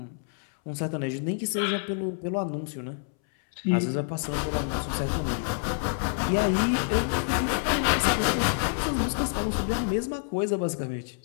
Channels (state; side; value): silent; right; 60 dB below the other